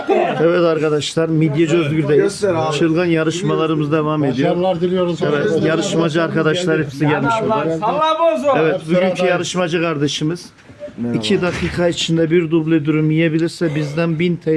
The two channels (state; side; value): identical; both; correlation 1.00